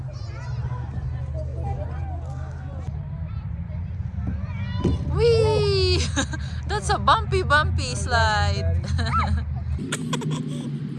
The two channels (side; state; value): both; identical; correlation 1.00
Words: Whee! That's a bumpy slide.